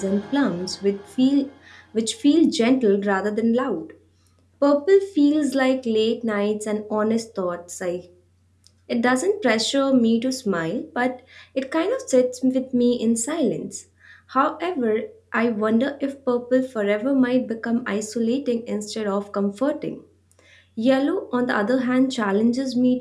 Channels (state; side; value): identical; both; correlation 1.00